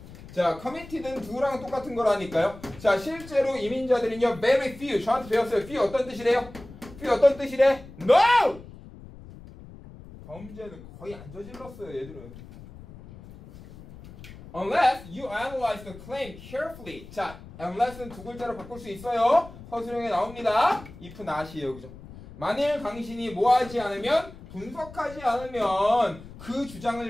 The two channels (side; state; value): left; noise; rumble, 17 dB below the sound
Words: 자, committed는 누구랑 똑같은 거라니까요. 자, 실제로 이민자들은요, very few. 저한테 배웠어요. few 어떤 뜻이래요? few 어떤 뜻이래? No! 범죄는 거의 안 저질렀어요, 얘들은. Unless you analyze the claim carefully. 자, unless는 두 글자로 바꿀 수 있어요. 서술형에 나옵니다. if not이에요, 그죠? 만일 당신이 뭐하지 않으면, 분석하지 않으면 그 주장을